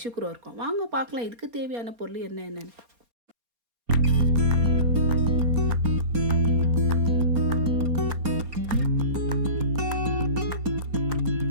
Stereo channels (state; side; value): late; left; 4.3 ms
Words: கூட இருக்கும். வாங்க பார்க்கலாம் இதுக்கு தேவையான பொருள் என்னென்னு.